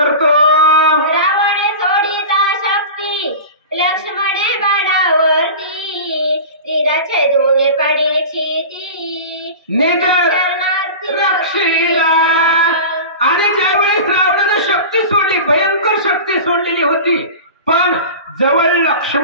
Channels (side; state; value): both; inverted; correlation -0.32